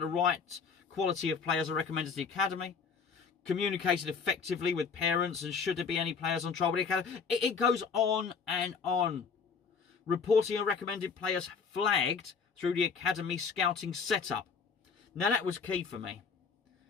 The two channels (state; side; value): quieter; right; 5.6 dB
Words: right quality of players are recommended to the academy. Communicated effectively with parents, and should there be any players on trial with the academy. It goes on and on. Reporting and recommended players flagged through the academy scouting setup. Now that was key for me,